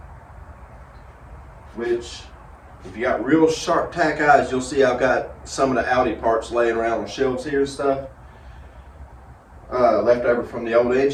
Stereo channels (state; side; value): identical; both; correlation 1.00